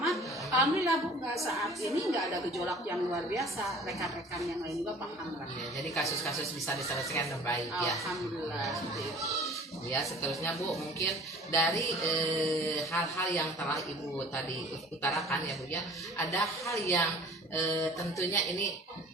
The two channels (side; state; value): both; normal; correlation 0.47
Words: Alhamdulillah Bu, saat ini nggak ada gejolak yang luar biasa. Rekan-rekan yang lain juga paham lah. Ya, jadi kasus-kasus bisa diselesaikan dengan baik ya. Alhamdulillah seperti itu. Ya, seterusnya Bu, mungkin dari hal-hal yang telah Ibu tadi utarakan ya Bu ya, ada hal yang tentunya ini